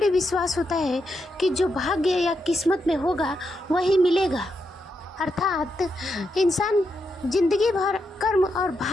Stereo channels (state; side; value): normal; both; correlation 0.83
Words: विश्वास होता है कि जो भाग्य या किस्मत में होगा वही मिलेगा। अर्थात इंसान जिंदगी भर कर्म और